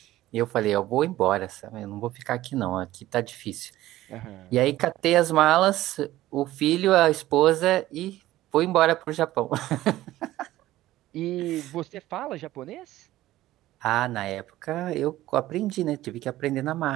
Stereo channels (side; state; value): left; quieter; 15.4 dB